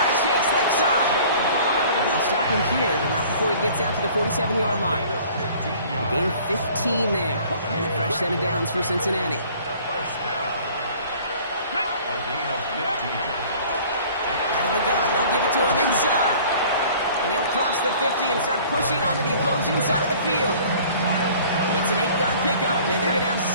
Chase, left side. And they'll stop him here, but not before he gets out to the 47-yard line. A gain of 15 there. And a fresh set of downs for Cincinnati. First down. A gain of 15. Out of the gun, they'll give it to him inside. And he'll cross the 50 and start pushing onto the opposing side of the field. It's an 8-yard pickup, and they're going to have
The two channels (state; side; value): inverted; both; correlation -0.50